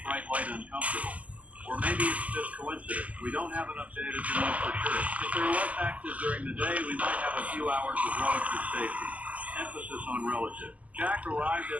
bright light uncomfortable. Or maybe it's just coincidence. We don't have enough data to know for sure. If they're less active during the day, we might have a few hours of relative safety. Emphasis on relative. Jack arrived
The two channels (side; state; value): left; late; 0.073 ms